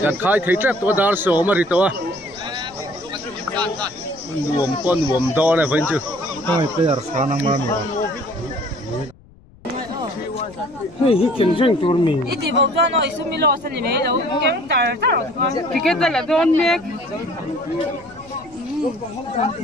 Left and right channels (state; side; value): noise; left; rumble, 25 dB below the sound